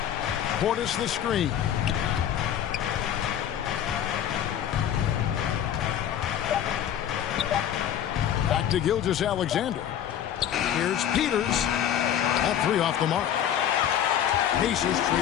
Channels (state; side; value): quieter; right; 10.1 dB